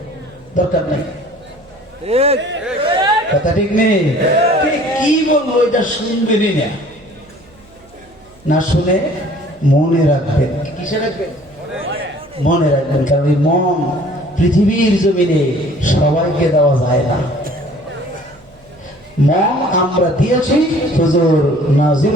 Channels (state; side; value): noise; right; hum, 28 dB below the sound